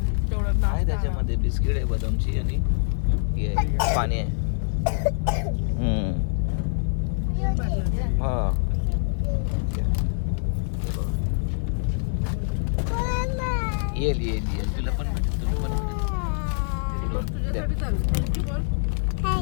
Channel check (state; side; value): silent; right; 62 dB below the other